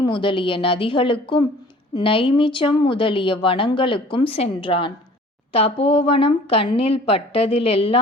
முதலிய நதிகளுக்கும், நைமிச்சம் முதலிய வனங்களுக்கும் சென்றான். தபோவனம் கண்ணில்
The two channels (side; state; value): both; normal; correlation 0.49